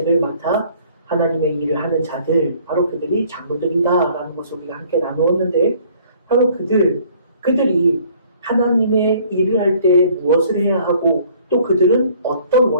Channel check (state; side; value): inverted; both; correlation -0.57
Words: 맡아 하나님의 일을 하는 자들, 바로 그들이 장로들이다라는 것을 우리가 함께 나누었는데 바로 그들이 하나님의 일을 할 때 무엇을 해야 하고 또 그들은 어떤